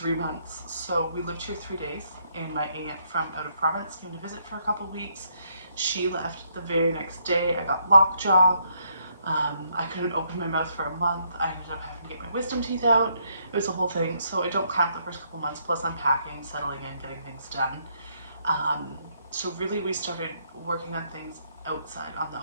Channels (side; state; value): both; inverted; correlation -0.73